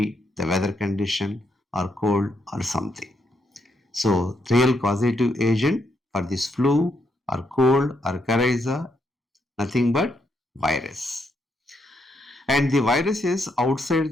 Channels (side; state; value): both; normal; correlation 0.78